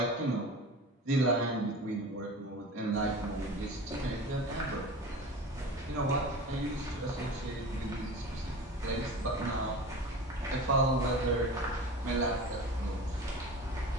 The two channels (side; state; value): both; normal; correlation 0.35